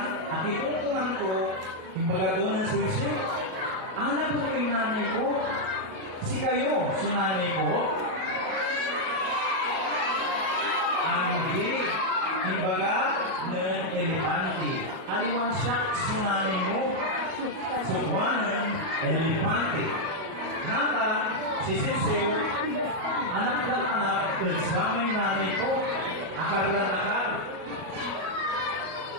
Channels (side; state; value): left; late; 37 ms